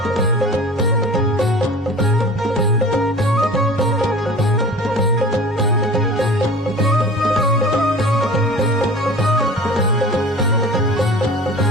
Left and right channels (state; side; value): normal; both; correlation 0.40